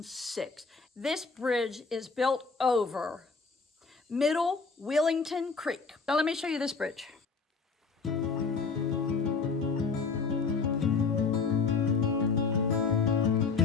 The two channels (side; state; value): right; quieter; 4.7 dB